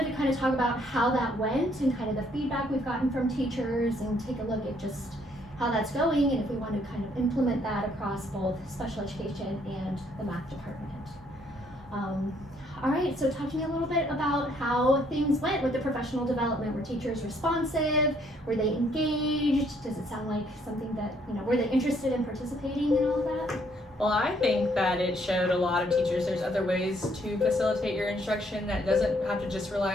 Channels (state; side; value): normal; both; correlation 0.67